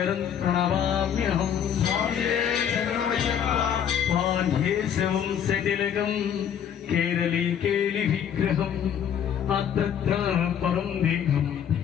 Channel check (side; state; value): right; quieter; 8.8 dB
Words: ప్రణమామ్యహం. పాండ్యేశవం శతిలకం కేరళీ కేలి విగ్రహం అత్ర పరం దేహం